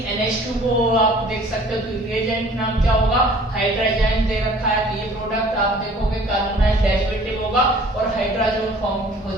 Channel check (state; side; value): normal; both; correlation 0.51